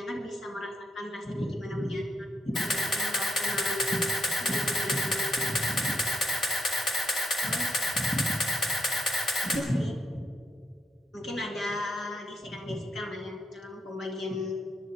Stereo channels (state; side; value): normal; both; correlation 0.78